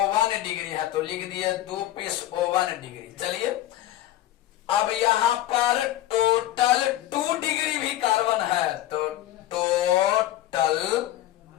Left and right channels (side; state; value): right; quieter; 13.9 dB